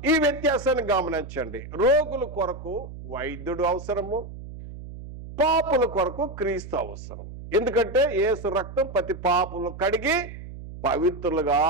ఈ వ్యత్యాసాన్ని గమనించండి. రోగుల కొరకు వైద్యుడు అవసరము, పాపుల కొరకు క్రీస్తు అవసరం. ఎందుకంటే యేసు రక్తం ప్రతి పాపులను కడిగి పవిత్రులుగా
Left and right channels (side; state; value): right; noise; hum, 12 dB below the sound